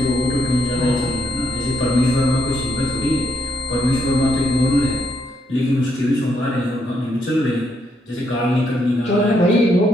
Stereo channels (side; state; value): both; normal; correlation 0.77